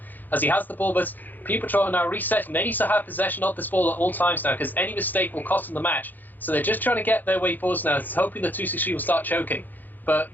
as he has the ball, but Puma Patrol are now resetting. They need to have possession of this ball at all times now, because any mistake will cost them the match. So they're just trying to get their way forwards now, hoping the 263 will start choking. But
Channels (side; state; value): right; late; 0.086 ms